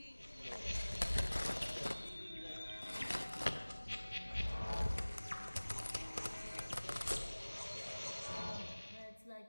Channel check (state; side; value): inverted; both; correlation -1.00